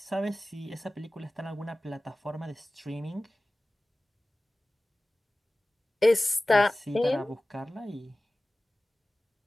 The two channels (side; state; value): both; normal; correlation 0.96